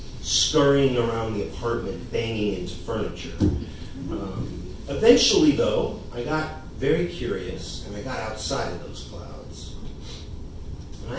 scurrying around the apartment, banging into furniture. Eventually, though, I got very curious, and I got outside of those clouds. And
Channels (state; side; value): identical; both; correlation 1.00